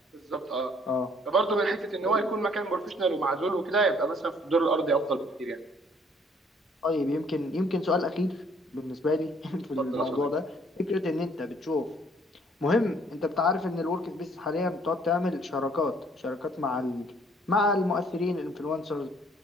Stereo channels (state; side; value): normal; both; correlation 0.62